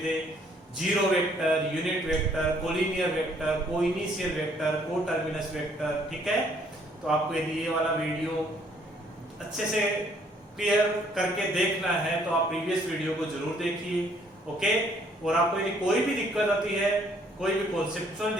थे. Zero vector, unit vector, collinear vector, coinitial vector, coterminous vector. ठीक है, तो आपको यदि ये वाला वीडियो अच्छे से क्लियर करके देखना है तो आप प्रीवियस वीडियो को जरूर देखिए. ओके, और आपको यदि कोई भी दिक्कत आती है, कोई भी कॉन्सेप्चुअल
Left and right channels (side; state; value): both; normal; correlation 0.64